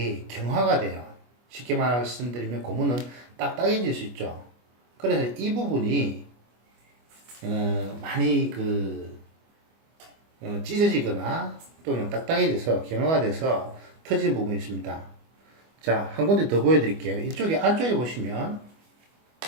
경화가 돼요. 쉽게 말씀드리면 고무는 딱딱해질 수 있죠. 그래서 이 부분이 많이 찢어지거나 또는 딱딱해져서 경화가 돼서 터지는 부분이 있습니다. 자, 한 군데 더 보여드릴게요. 이쪽에 안쪽에 보시면,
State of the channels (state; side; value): late; left; 25 ms